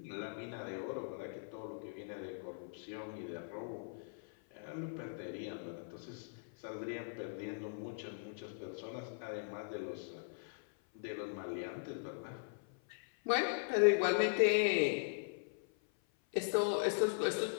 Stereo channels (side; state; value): right; silent; 51 dB below the other